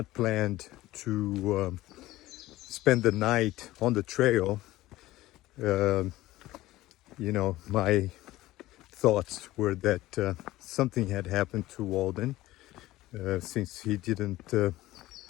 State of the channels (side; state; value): right; quieter; 16.9 dB